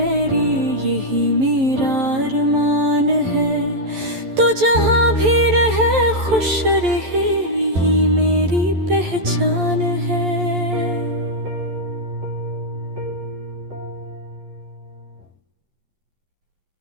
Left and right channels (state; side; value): late; left; 11 ms